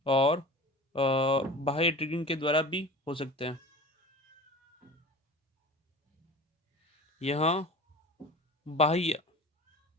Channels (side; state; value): both; normal; correlation 0.37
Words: और बाह्य ट्रिगरिंग के द्वारा भी हो सकते हैं। यहाँ बाह्य